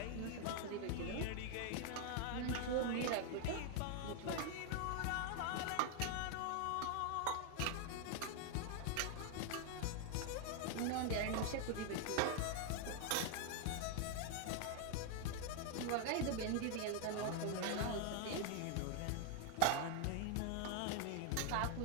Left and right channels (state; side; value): different; both; correlation 0.00